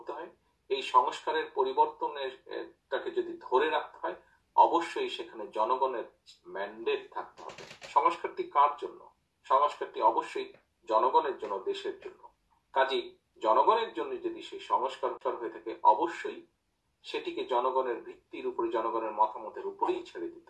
হয়, এই সংস্কারের পরিবর্তনটাকে যদি ধরে রাখতে হয়, অবশ্যই সেখানে জনগণের ম্যান্ডেট থাকতে হবে। সংস্কারটি কার জন্য? সংস্কারটি অবশ্যই জনগণের জন্য, দেশের জন্য। কাজেই জনগণের জন্য যদি সেই সংস্কার হয়ে থাকে, অবশ্যই সেটিকে জনগণের ভিত্তির উপরে, জনগণের মতামতের উপরেই ছেড়ে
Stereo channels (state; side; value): identical; both; correlation 1.00